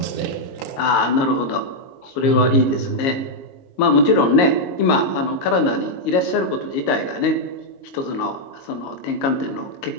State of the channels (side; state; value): right; late; 22 ms